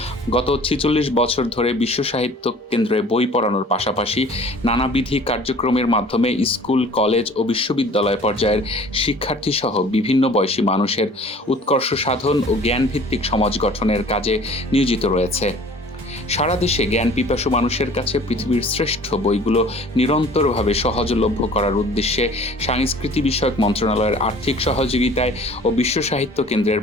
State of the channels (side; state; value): both; normal; correlation 0.48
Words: গত ৪৬ বছর ধরে বিশ্ব সাহিত্য কেন্দ্রে বই পড়ানোর পাশাপাশি নানাবিধি কার্যক্রমের মাধ্যমে স্কুল, কলেজ ও বিশ্ববিদ্যালয় পর্যায়ের শিক্ষার্থী সহ বিভিন্ন বয়সী মানুষের উৎকর্ষ সাধন ও জ্ঞানভিত্তিক সমাজ গঠনের কাজে নিয়োজিত রয়েছে। সারা দেশে জ্ঞান পিপাসু মানুষের কাছে পৃথিবীর শ্রেষ্ঠ বইগুলো নিরন্তরভাবে সহজলভ্য করার উদ্দেশ্যে সাংস্কৃতি বিষয়ক মন্ত্রণালয়ের আর্থিক সহযোগিতায় ও বিশ্ব সাহিত্য কেন্দ্রের